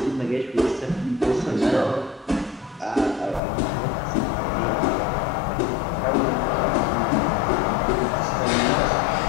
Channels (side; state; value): right; drops out; at 3.4 s